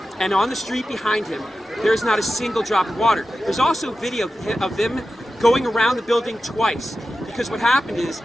And on the street behind him, there's not a single drop of water. There's also video of them going around the building twice, because what happened is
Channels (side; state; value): both; normal; correlation 0.92